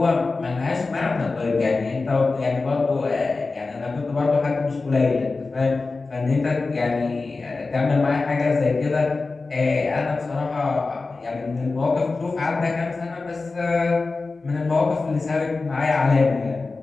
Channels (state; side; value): quieter; right; 3.8 dB